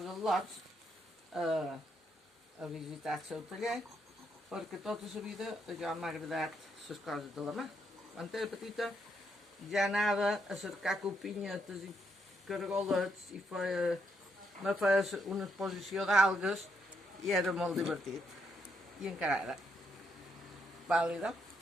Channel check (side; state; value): both; normal; correlation 0.76